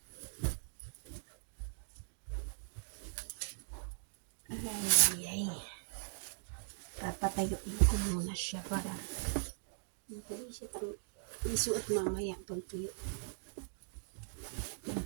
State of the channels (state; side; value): silent; left; digital silence